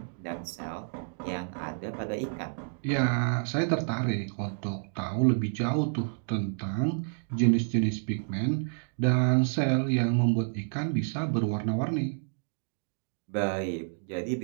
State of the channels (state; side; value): silent; left; digital silence